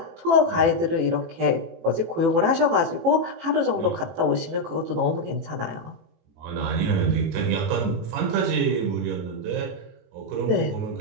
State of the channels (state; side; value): late; left; 18 ms